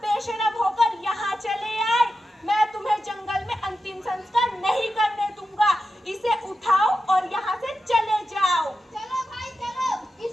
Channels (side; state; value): both; normal; correlation 0.90